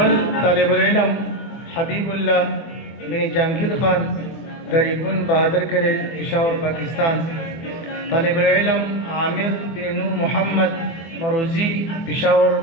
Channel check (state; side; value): late; right; 24 ms